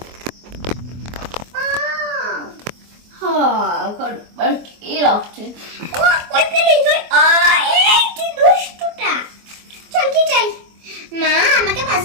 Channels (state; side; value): late; left; 24 ms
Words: কি রাখছে? চল কি চাই? মা আমাকে 5